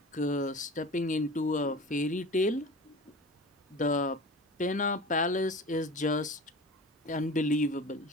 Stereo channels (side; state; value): both; normal; correlation 0.36